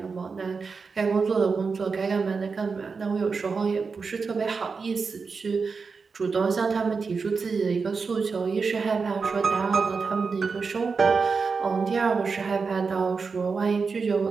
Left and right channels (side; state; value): left; quieter; 4.9 dB